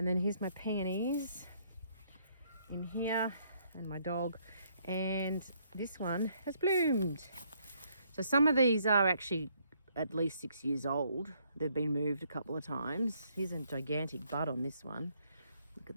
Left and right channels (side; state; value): both; inverted; correlation -0.69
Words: then here's my peonies in here, and my dog. And this one has bloomed. So some of these are actually at least 6 years old. They've been moved a couple of times. Here's a gigantic bud on this one. Look at